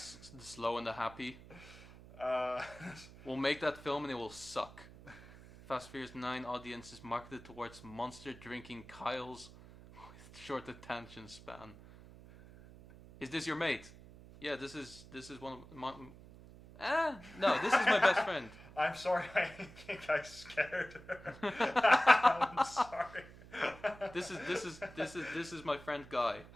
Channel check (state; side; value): noise; right; hum, 18 dB below the sound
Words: Slow and the Happy. We'll make that film and it will suck. Fast Furious 9 audience is marketed towards monster drinking Kyles with short attention span. Is this your mate? Yeah, this is one of my... no, this is my best friend. I'm sorry, I think I scared her. I'm sorry. This is my friend Guy.